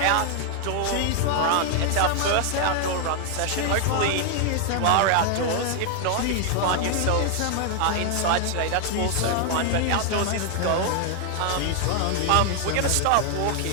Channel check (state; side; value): different; both; correlation 0.00